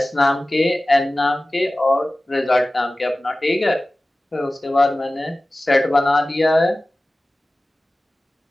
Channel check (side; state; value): both; normal; correlation 0.97